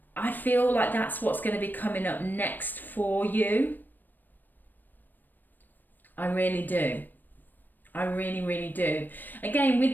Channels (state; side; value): late; right; 0.090 ms